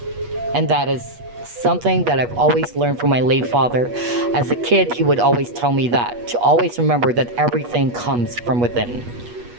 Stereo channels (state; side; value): late; left; 8.3 ms